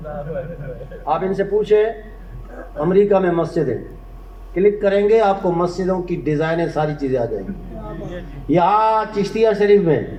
آپ ان سے پوچھیں امریکہ میں مسجدیں، کلک کریں گے آپ کو مسجدوں کی ڈیزائنیں ساری چیزیں آ جائیں گی. یہاں چشتیہ شریف میں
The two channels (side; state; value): both; identical; correlation 1.00